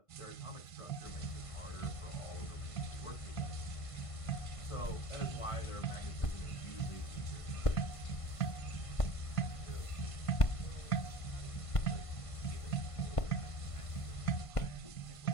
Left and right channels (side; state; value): right; late; 1.5 ms